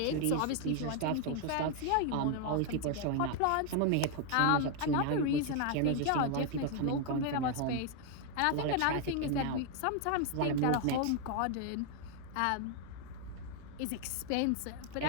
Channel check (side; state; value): both; different; correlation 0.00